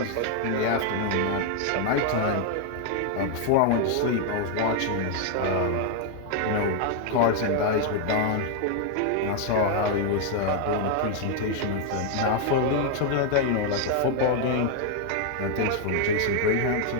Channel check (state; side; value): different; both; correlation 0.00